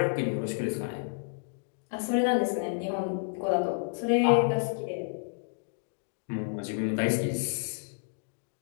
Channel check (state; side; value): silent; right; digital silence